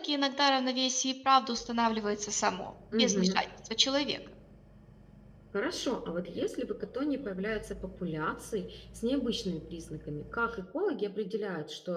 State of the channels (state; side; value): identical; both; correlation 1.00